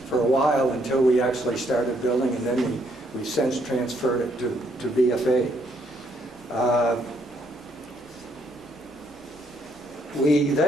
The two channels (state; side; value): noise; left; hum, 29 dB below the sound